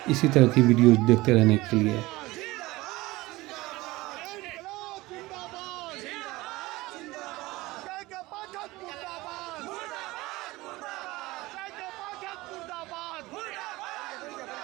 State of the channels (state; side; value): quieter; left; 20.0 dB